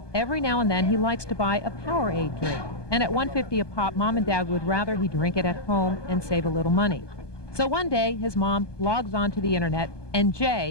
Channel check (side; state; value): right; late; 1.2 ms